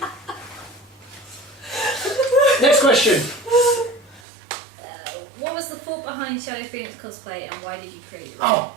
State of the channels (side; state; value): left; drops out; at 4.2 s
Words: Next question. What was the thought behind Shadow Phoenix Cosplay and why did you create it? Oh,